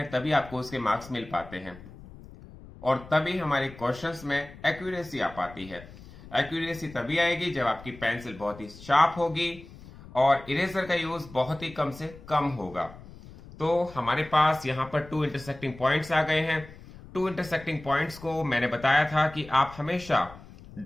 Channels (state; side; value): noise; left; rumble, 18 dB below the sound